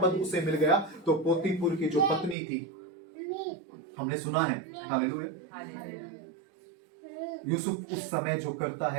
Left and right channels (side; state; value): left; drops out; at 2.4 s